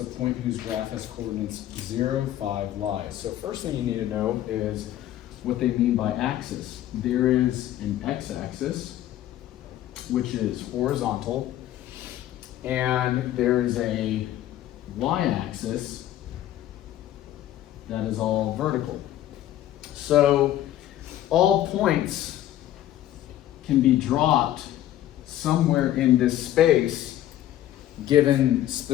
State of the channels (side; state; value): right; quieter; 12.9 dB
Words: point whose graph has coordinates 0, 5 lies. So first thing you need to know is what they mean by axis. There is an x-axis, which is horizontal, and there is a y-axis that is all vertical. So all points can be dropped somewhere in this space given